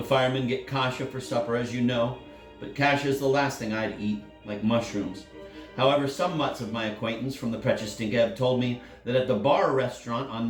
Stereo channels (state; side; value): identical; both; correlation 1.00